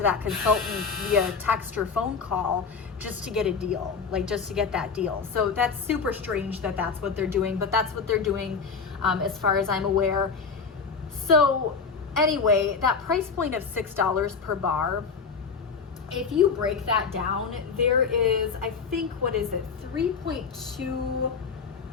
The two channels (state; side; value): quieter; right; 5.3 dB